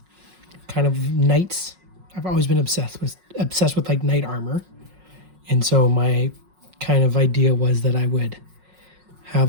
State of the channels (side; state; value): left; late; 5.5 ms